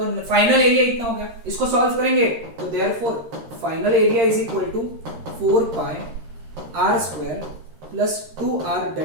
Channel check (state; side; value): late; left; 13 ms